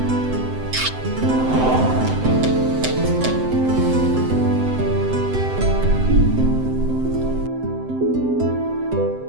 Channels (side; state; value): left; late; 7.8 ms